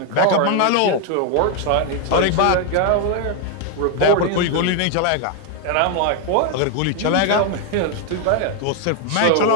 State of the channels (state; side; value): different; both; correlation 0.01